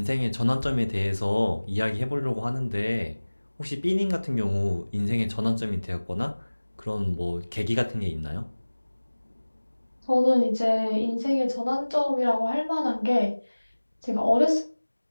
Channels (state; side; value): inverted; both; correlation -1.00